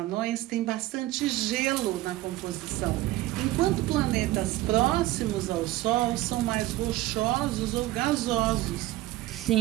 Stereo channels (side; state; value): left; quieter; 16.7 dB